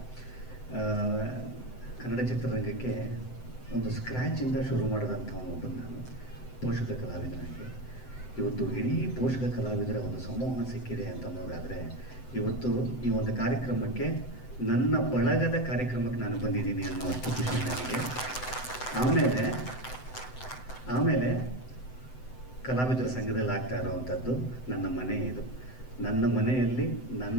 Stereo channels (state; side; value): late; right; 7.9 ms